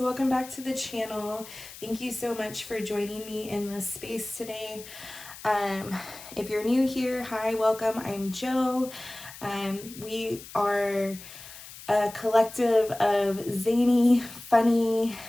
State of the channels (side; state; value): left; noise; hiss, 16 dB below the sound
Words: welcome back to the channel. Thank you so much for joining me in this space today. If you're new here, hi, welcome. I'm Jo. We are a collective of zany, funny,